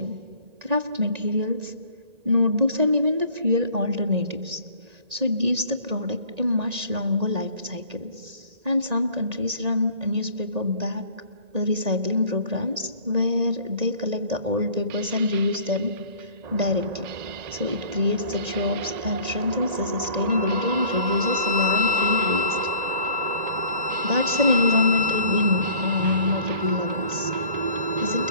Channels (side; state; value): left; late; 1.9 ms